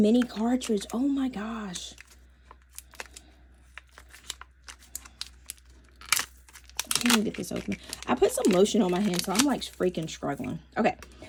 cartridge. Oh my gosh. Let me get this open. I put some lotion on my hand, so I'm like freaking struggling. Okay,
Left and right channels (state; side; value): identical; both; correlation 1.00